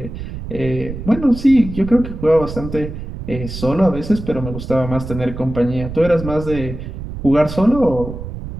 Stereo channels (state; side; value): noise; right; rumble, 9 dB below the sound